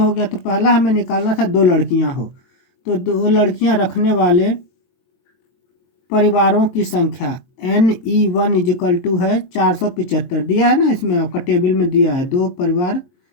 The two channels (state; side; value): late; right; 22 ms